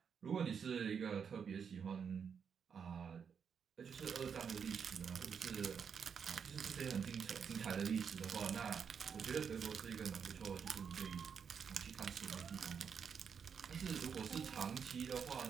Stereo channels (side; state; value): left; quieter; 6.8 dB